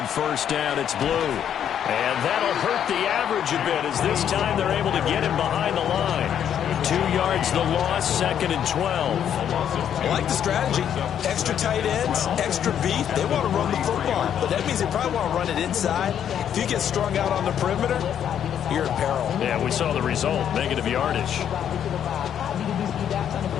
first down, it's Blue. And that'll hurt the average a bit as this time they're able to get him behind the line. 2 yards the loss, second and 12. I like the strategy. Extra tight ends, extra beef. They want to run the football, but that means they probably want to run it inside. If you get strung out on the perimeter, you're in peril. Yeah, we saw the result, negative yardage.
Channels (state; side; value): quieter; right; 9.3 dB